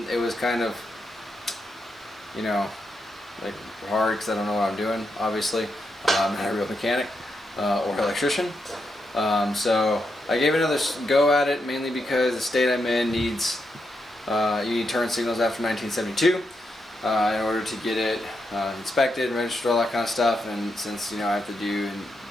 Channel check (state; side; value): normal; both; correlation 0.83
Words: it was kind of, like hard because I don't know what I'm doing, obviously. I'm not a real mechanic or electrician. So I gave it another go at it, mainly because the state I'm in needs you need turn signals after 1972 in order to get it inspected, registered, all that kind of stuff. And since I have to do and